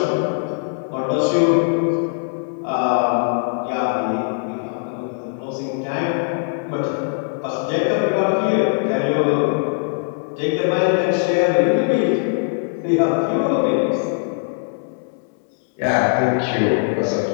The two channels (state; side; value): silent; right; 65 dB below the other